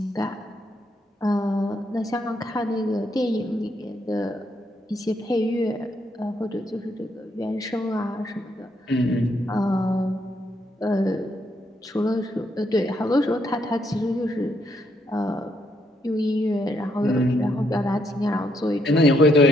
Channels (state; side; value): normal; both; correlation 0.75